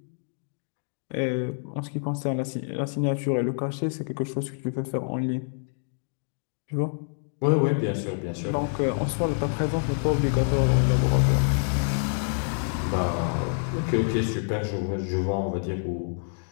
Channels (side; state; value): right; silent; 60 dB below the other